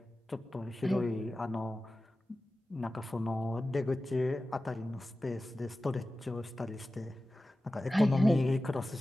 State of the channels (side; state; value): both; normal; correlation 0.95